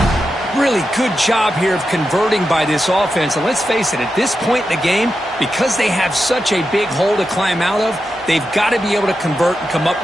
Really good job here of converting by this offense. And let's face it, at this point in the game, because they have such a big hole to climb out of, they've got to be able to convert and come up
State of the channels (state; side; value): normal; both; correlation 0.89